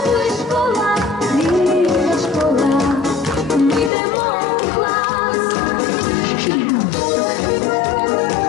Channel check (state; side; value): drops out; right; at 3.9 s